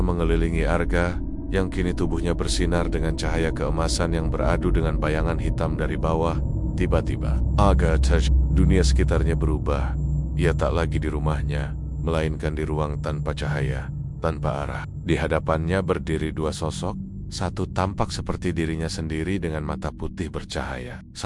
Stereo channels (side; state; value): both; identical; correlation 1.00